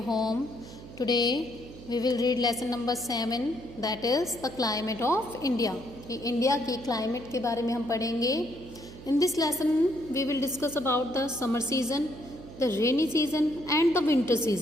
home. Today we will read lesson number 7, that is the climate of India. India की climate के बारे में हम पढ़ेंगे. In this lesson we will discuss about the summer season, the rainy season and the winter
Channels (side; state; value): right; noise; hum, 16 dB below the sound